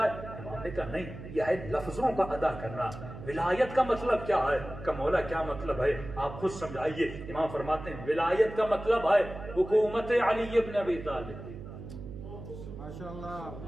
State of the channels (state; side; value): noise; right; hum, 12 dB below the sound